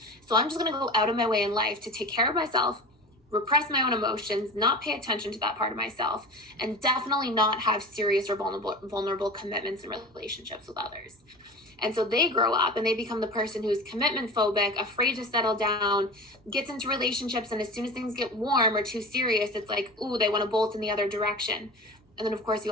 So I'm just going to go out of my way in life to take care of myself, repress my own emotions, not pay attention to that part of myself, and definitely not have serious or vulnerable commitments and relationships with others. And so they grow up and they become the person who's commitment phobic, afraid to settle down, gets into relationships, and as soon as things get warm or too serious, it's like, ooh, they want to bolt in the other direction. And then, of course, you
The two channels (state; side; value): normal; both; correlation 0.33